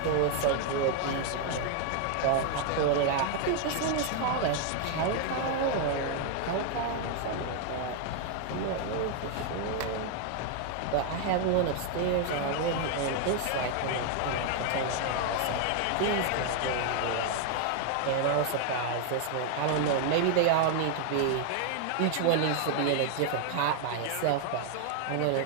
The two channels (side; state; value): both; different; correlation 0.00